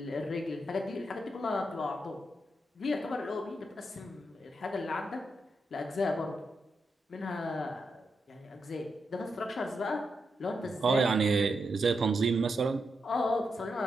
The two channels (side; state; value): both; normal; correlation 0.84